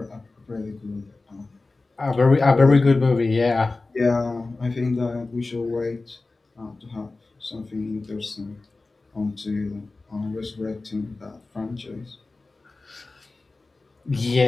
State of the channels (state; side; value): quieter; right; 3.5 dB